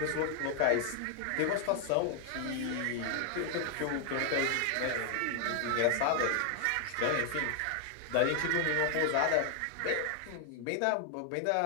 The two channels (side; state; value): both; different; correlation 0.00